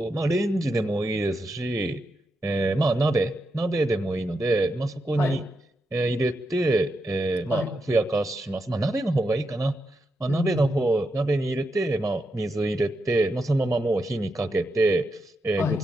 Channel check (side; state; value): both; normal; correlation 0.85